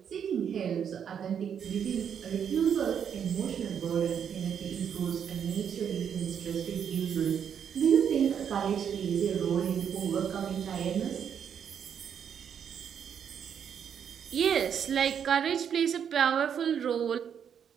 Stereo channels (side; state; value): left; quieter; 8.1 dB